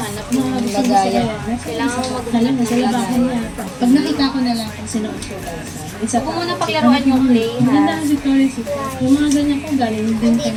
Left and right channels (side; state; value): both; identical; correlation 1.00